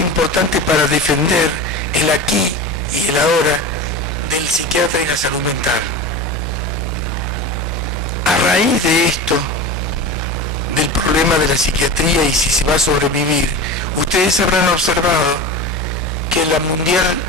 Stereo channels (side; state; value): both; normal; correlation 0.29